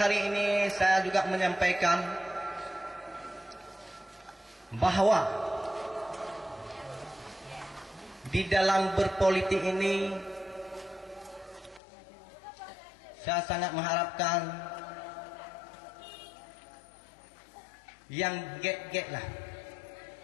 ini saya juga menyampaikan bahwa di dalam berpolitik ini saya sangat mengharapkan yang get lah.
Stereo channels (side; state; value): right; drops out; at 11.8 s